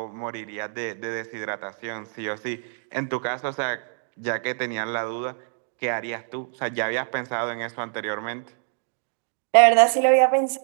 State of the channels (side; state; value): left; silent; digital silence